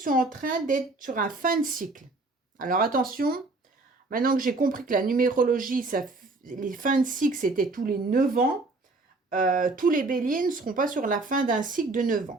en train d'être sur un fin de cycle. Alors attention, maintenant que j'ai compris que la numérologie, les fins de cycle, c'était tous les 9 ans, tous les béliers ne seront pas sur la fin d'un cycle de 9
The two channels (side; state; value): left; quieter; 3.3 dB